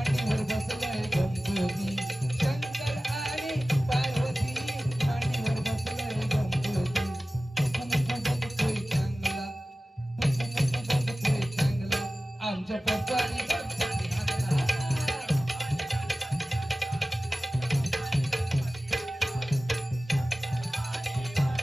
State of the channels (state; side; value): normal; both; correlation 0.96